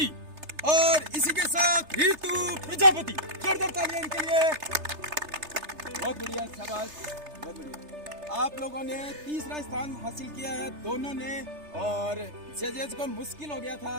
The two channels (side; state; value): left; late; 3.3 ms